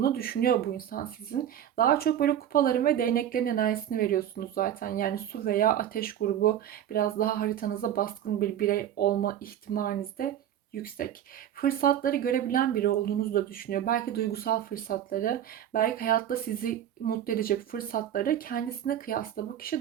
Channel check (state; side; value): quieter; left; 10.6 dB